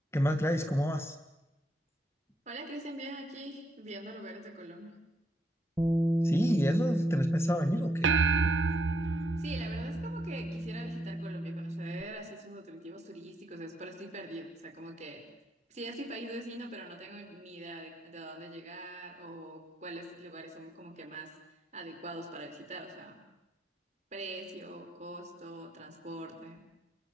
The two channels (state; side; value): normal; both; correlation 0.77